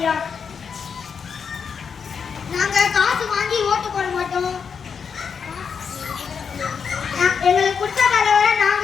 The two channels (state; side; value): quieter; right; 6.4 dB